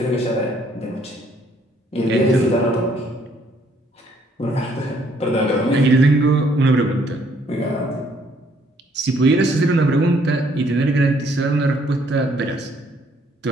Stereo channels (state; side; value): normal; both; correlation 0.66